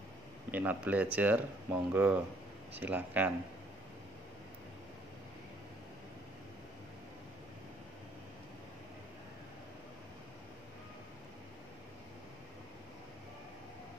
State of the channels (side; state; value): both; normal; correlation 0.63